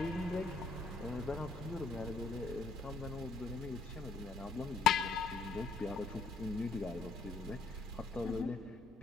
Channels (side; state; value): right; quieter; 4.0 dB